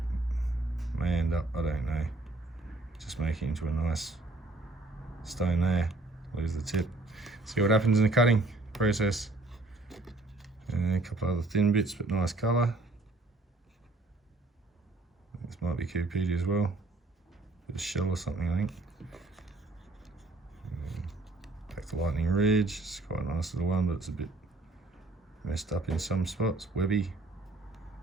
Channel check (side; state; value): left; quieter; 3.1 dB